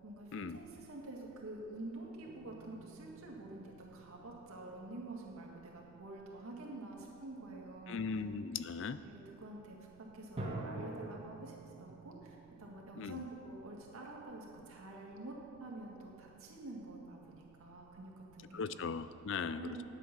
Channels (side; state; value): right; noise; rumble, 18 dB below the sound